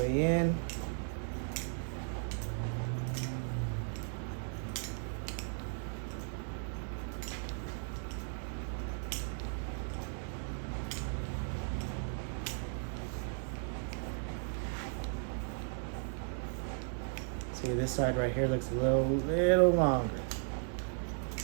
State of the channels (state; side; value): silent; left; 54 dB below the other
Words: in. See, this side right here looks a little longer.